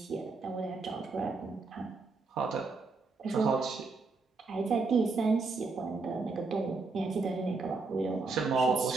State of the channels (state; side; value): quieter; left; 4.0 dB